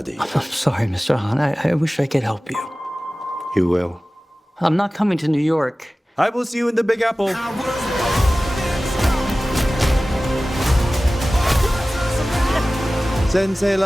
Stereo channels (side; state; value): both; normal; correlation 0.97